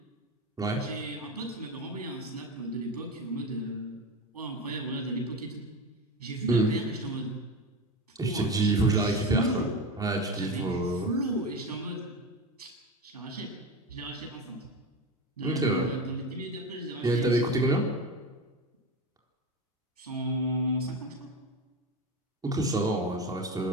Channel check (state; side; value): normal; both; correlation 0.23